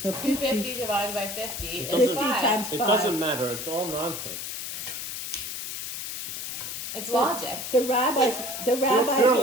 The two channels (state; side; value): noise; left; hiss, 6 dB below the sound